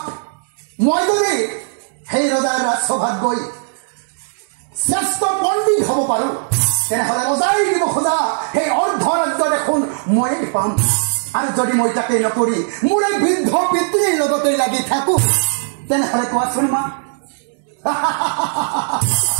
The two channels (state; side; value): silent; left; digital silence